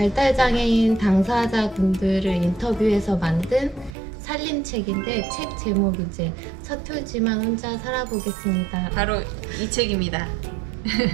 당사자분들을 인터뷰해서 만든 살림책인데 책 제목이 이제 서툴지만 혼자 살아보겠습니다. 바로 이 책입니다.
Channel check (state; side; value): drops out; left; at 4.0 s